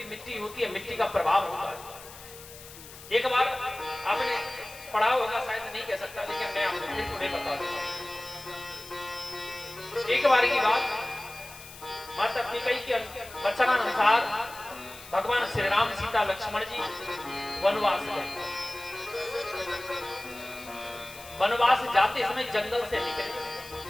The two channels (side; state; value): left; noise; hiss, 17 dB below the sound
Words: मिट्टी होती है, मिट्टी का प्रभाव होता है। एक बार आपने पढ़ा होगा, शायद नहीं कह सकता, लेकिन मैं आपको फिर थोड़े बता दूंगा। एक बार की बात, माता कैकेयी के वचनानुसार भगवान श्री राम सीता लक्ष्मण जी वनवास गए। वनवास जाते समय जंगल से निकले।